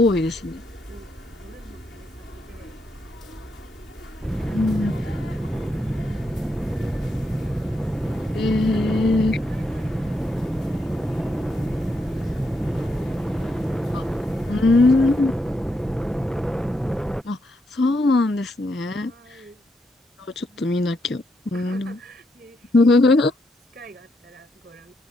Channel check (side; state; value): both; normal; correlation 0.79